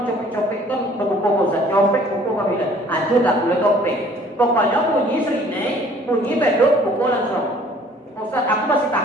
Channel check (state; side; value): normal; both; correlation 0.55